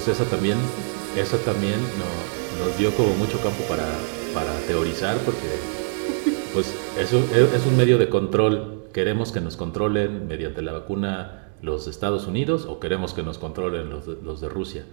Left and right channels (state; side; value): silent; left; 60 dB below the other